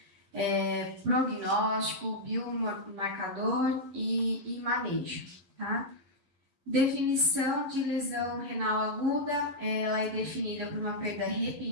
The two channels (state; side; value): late; left; 11 ms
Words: prognóstico, biomarcador e manejo, tá? Definição de lesão renal aguda, ela é definida por uma perda